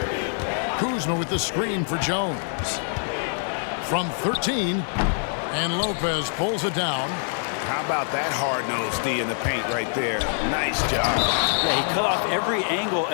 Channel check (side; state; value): right; silent; 59 dB below the other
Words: Kuzma with the screen for Jones. From 13, and Lopez pulls it down. How about that hard-nosed D in the paint right there? Nice job. Yeah, he cut off every angle